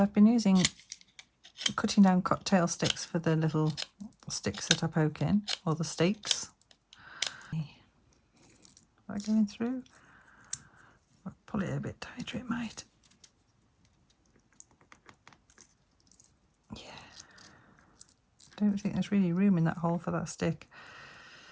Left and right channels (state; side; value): identical; both; correlation 1.00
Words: been cutting down cocktail sticks for the little sticks that I poke in, or the stakes. Is that going through? I'll pull it a bit tighter, it might. Yeah. Don't think there's really room in that hole for that stick.